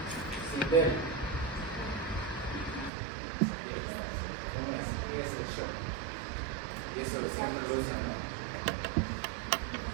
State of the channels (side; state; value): left; drops out; at 2.9 s